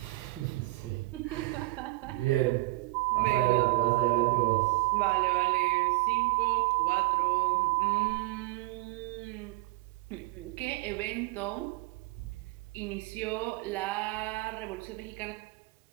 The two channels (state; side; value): quieter; left; 20.6 dB